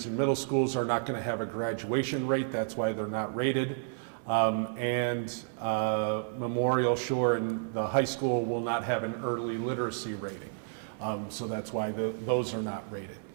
and middle schools are not going to have a graduation rate. That's why they're not rated. Memorial Shore and the high school will not have an early literacy rating. So that's why those are not rated.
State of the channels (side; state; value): left; silent; 57 dB below the other